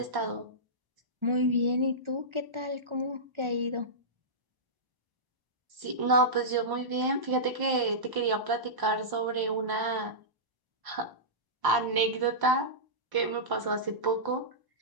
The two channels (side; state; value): left; late; 1.0 ms